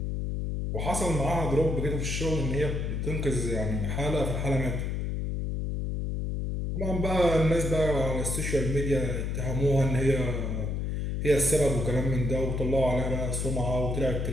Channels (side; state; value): left; noise; hum, 1 dB below the sound